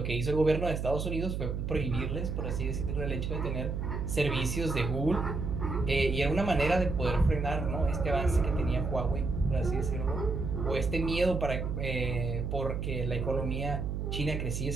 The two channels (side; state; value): right; noise; hum, 2 dB below the sound